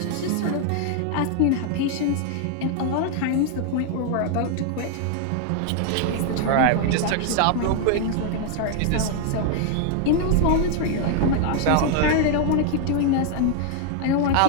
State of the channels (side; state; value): both; different; correlation 0.00